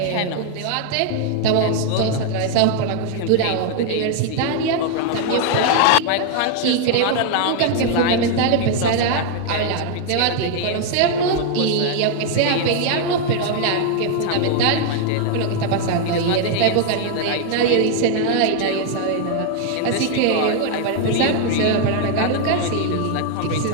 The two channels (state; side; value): different; both; correlation 0.00